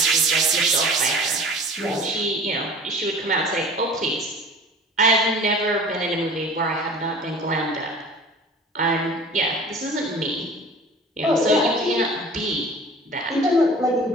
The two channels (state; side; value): normal; both; correlation 0.43